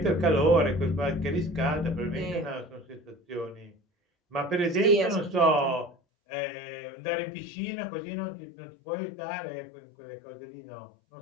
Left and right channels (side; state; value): right; drops out; at 6.0 s